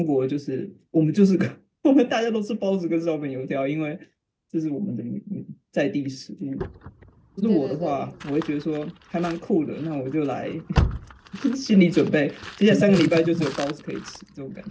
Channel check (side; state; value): both; identical; correlation 1.00